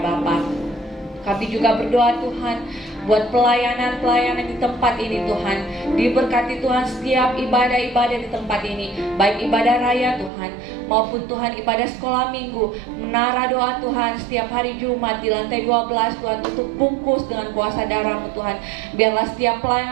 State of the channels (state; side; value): drops out; left; at 10.3 s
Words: Bapa. Kami juga berdoa Tuhan buat pelayanan-pelayanan di tempat ini Tuhan. Diberkati Tuhan setiap ibadah-ibadah di tempat ini, baik ibadah raya Tuhan maupun Tuhan ibadah sekolah minggu, menara doa Tuhan setiap hari Jumat di lantai 12 Tuhan, tutup bungkus dengan kuasa darah-Mu Tuhan. Biarlah setiap